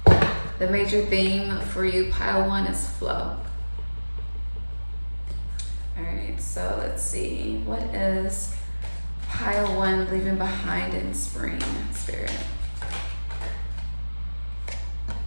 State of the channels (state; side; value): inverted; both; correlation -1.00